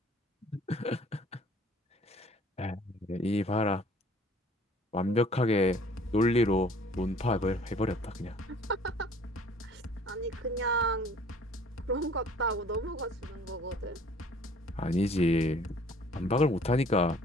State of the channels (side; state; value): both; normal; correlation 0.53